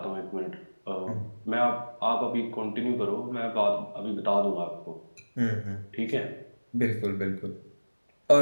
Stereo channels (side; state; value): both; inverted; correlation -1.00